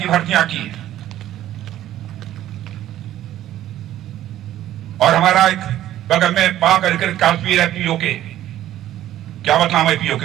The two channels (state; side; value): quieter; left; 12.9 dB